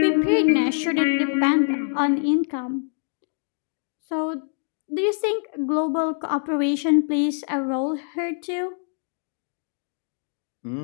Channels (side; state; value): right; silent; digital silence